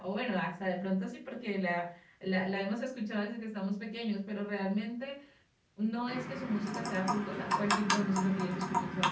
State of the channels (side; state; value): both; identical; correlation 1.00